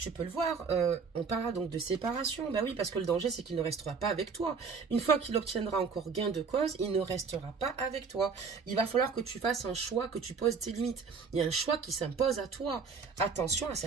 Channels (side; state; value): left; quieter; 5.3 dB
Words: peux le voir, on parlera donc de séparation. Ben oui, parce que le danger, c'est qu'il ne restera pas avec toi. Une fois qu'il obtiendra encore gain de cause, il ne restera pas avec toi. Il va falloir que tu fasses un choix, que tu poses tes limites. Il y a un choix qui s'impose à toi. Attention à